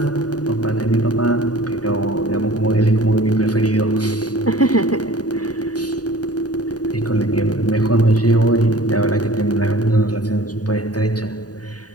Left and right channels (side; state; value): right; late; 0.68 ms